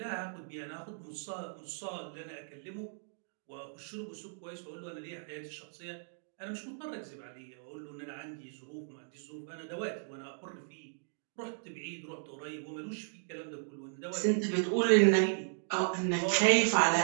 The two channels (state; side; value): silent; left; digital silence